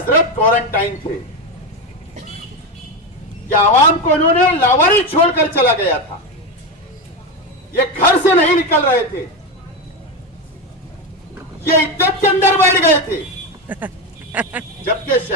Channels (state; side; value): normal; both; correlation 0.14